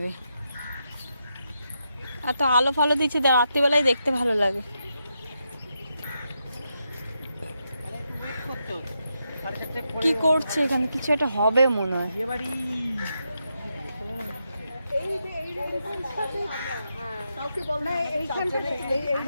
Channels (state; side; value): inverted; both; correlation -0.84